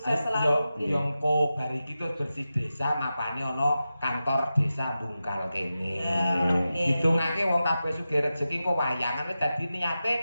selalu. Yo engko bar iki terus bersih desa mapane ana kantor desa Bungkal kene. Ya, nggih. Hitungake wong kabeh sugih rezeki kok wayangan wis dadi niate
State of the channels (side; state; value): both; inverted; correlation -0.92